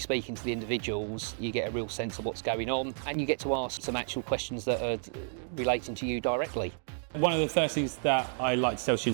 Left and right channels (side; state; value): left; silent; 57 dB below the other